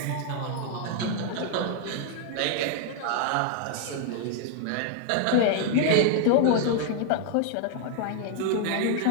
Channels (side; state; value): both; different; correlation 0.00